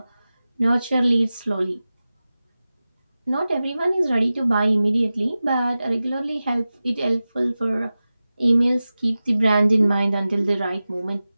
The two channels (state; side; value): inverted; both; correlation -0.95